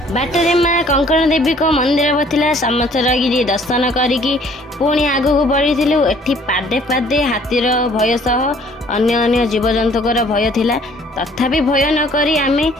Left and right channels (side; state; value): both; normal; correlation 0.57